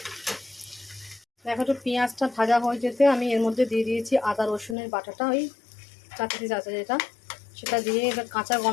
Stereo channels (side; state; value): right; drops out; at 4.8 s